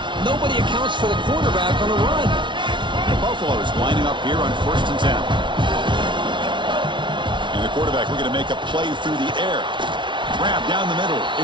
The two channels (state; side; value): late; left; 0.24 ms